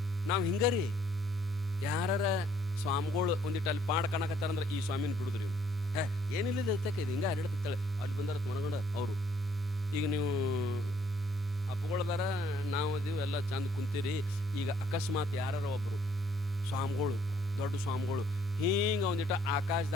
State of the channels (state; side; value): normal; both; correlation 0.65